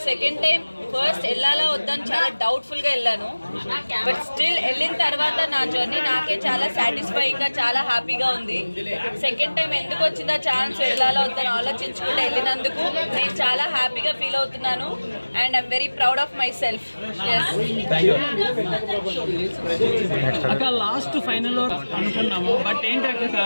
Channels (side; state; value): both; inverted; correlation -1.00